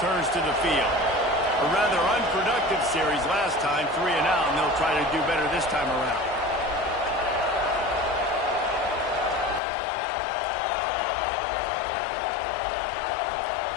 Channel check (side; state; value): right; drops out; at 9.6 s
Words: to the field. A rather unproductive series last time, 3 and out, and they'll try to do better this time around.